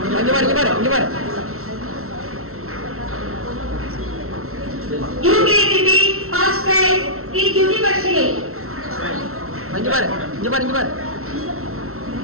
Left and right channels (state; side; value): late; left; 0.63 ms